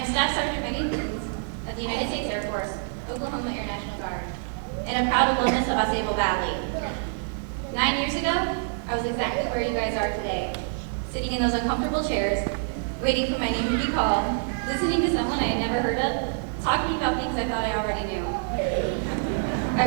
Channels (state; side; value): silent; left; digital silence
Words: Staff Sergeant Megan Coons of the United States Air Force, Oklahoma Air National Guard, and a proud alumnus of AuSable Valley. 9 years ago, I was exactly where you guys are today, sitting in those uncomfortable chairs, waiting for my name to be called, listening to someone I had never heard of, talking about things I thought I already knew. I